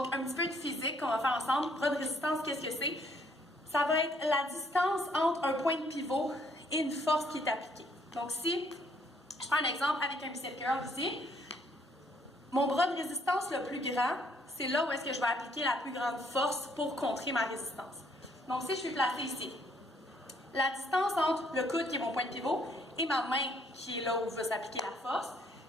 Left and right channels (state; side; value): normal; both; correlation 0.66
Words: un petit peu de physique qu'on va faire ensemble. Bras de résistance, qu'est-ce que c'est? Ça va être la distance entre un point de pivot et une force qui est appliquée. Donc, si je prends un exemple avec un bicep curl ici, mon bras de résistance le plus grand, c'est là où est-ce que je vais appliquer la plus grande force pour contrer ma résistance. Donc, si je suis placée ici, la distance entre le coude, qui est mon point de pivot, et ma main, qui est là où va s'appliquer la force,